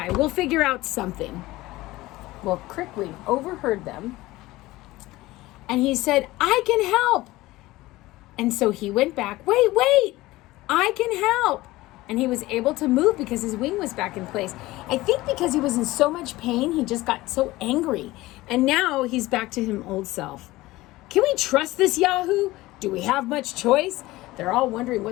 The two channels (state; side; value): quieter; right; 18.6 dB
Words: We'll figure out something. Well, Crickwing overheard them, and he said, "I can help." And so he went back. Wait, I can help. And he was able to move because his wing was back in place. I think because he was in so much pain, he just got so angry. And now he's back to his old self. Can we trust this Yahoo? Do we have much choice? They're all wondering